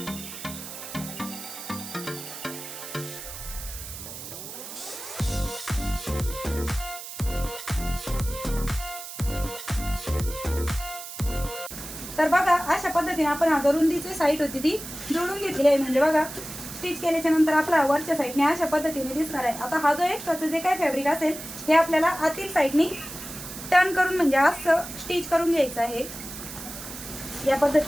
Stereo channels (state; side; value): noise; right; hiss, 11 dB below the sound